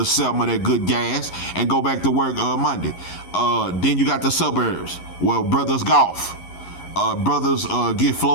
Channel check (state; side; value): late; right; 11 ms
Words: a 7 of that good gas and go back to work Monday. Then you got the suburbs. Well, brothers golf. Brothers get